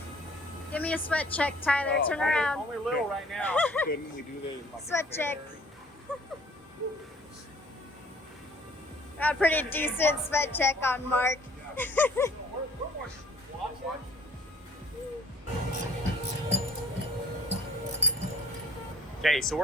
Give me a sweat check, Tyler. Turn around. Only little right now. Couldn't we do the Sweat check. Got a pretty decent sweat check on Mark. Okay, so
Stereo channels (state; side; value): normal; both; correlation 0.55